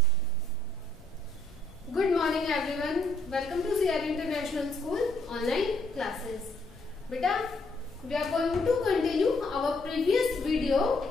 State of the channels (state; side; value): noise; left; rumble, 24 dB below the sound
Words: morning everyone. Welcome to CR International School online classes. Beta, we are going to continue our previous video